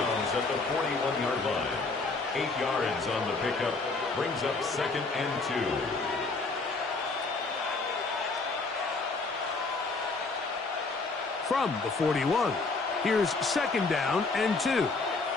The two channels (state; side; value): quieter; right; 3.8 dB